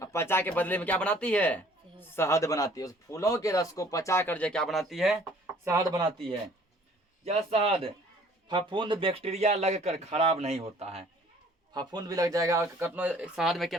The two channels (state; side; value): normal; both; correlation 0.55